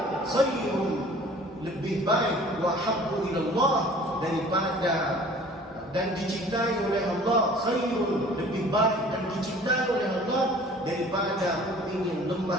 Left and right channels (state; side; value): normal; both; correlation 0.49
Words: khairun, lebih baik, wa habbu ila Allah, daripada dan dicintai oleh Allah, khairun, lebih baik dan dicintai oleh Allah daripada mu'min yang